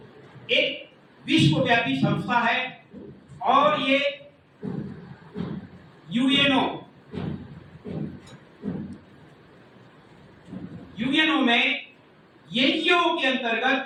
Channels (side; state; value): both; identical; correlation 1.00